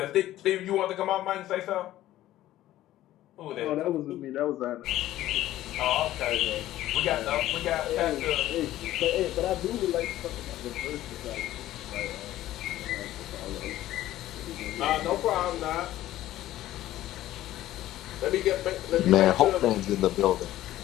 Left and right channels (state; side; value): quieter; right; 14.4 dB